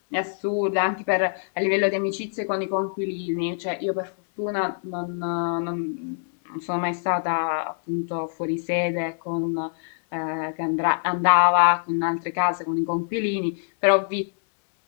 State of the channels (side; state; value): right; silent; digital silence